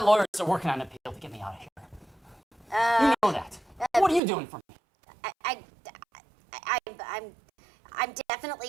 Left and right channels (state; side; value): drops out; left; at 4.2 s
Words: lawyers are working on an appeal to get me out of here. You know that. What are you doing for me? I'm